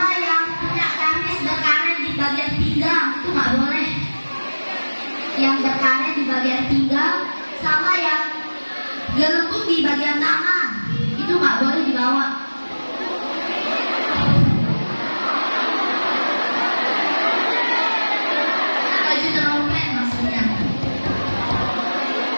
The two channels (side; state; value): both; inverted; correlation -1.00